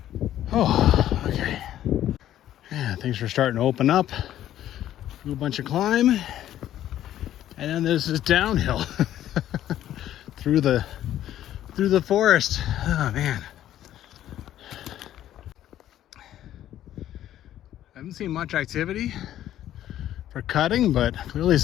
Oh, okay. Yeah, things are starting to open up. Do a bunch of climb, and then there's this downhill through the forest. Oh man. I haven't seen much activity for cutting, but clearly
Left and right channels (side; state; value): right; quieter; 12.2 dB